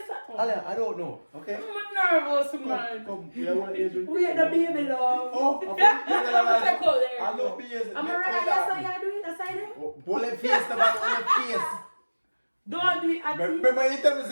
that? Ale, I don't know. Okay? I'm nervous, man. Come. You have one ears with me. We had the baby love. Oh, Take out there. I know ears. I'm alright. Yes, I do it. other side there? Hold the face, the man, hold the face. Don't do it at me. Remember you tell me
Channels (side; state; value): both; inverted; correlation -1.00